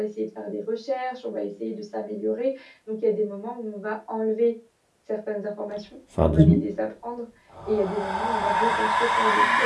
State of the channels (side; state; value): both; identical; correlation 1.00